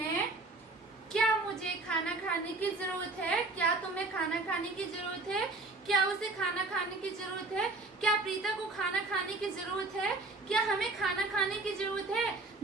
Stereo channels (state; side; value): quieter; left; 3.3 dB